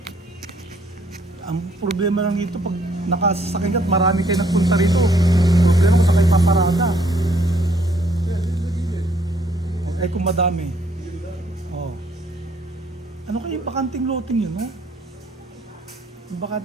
Ang problema lang dito, pag nakasasakay ka at marami kayo nagpunta rito. Problema kung saan kayo paparada. Eh kung madami. Oh. Ano kayo yung bakanting loting yun, no? Yung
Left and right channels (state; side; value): normal; both; correlation 0.66